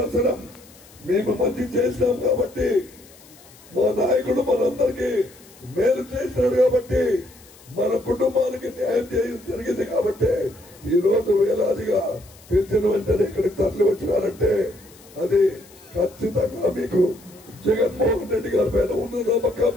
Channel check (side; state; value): left; noise; hiss, 24 dB below the sound